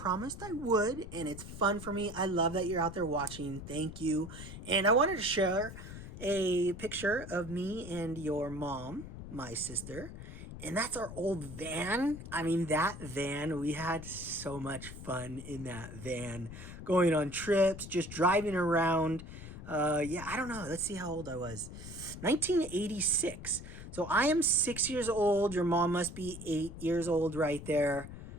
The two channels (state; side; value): noise; left; rumble, 12 dB below the sound